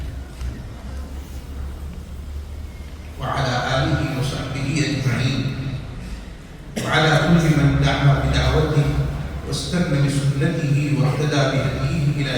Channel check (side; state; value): both; identical; correlation 1.00